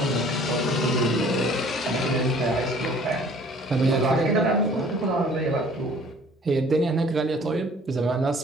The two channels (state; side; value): normal; both; correlation 0.53